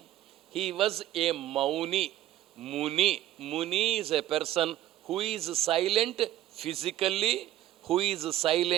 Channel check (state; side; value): quieter; left; 13.5 dB